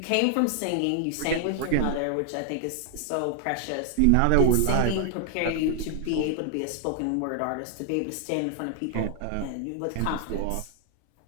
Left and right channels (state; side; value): different; both; correlation 0.00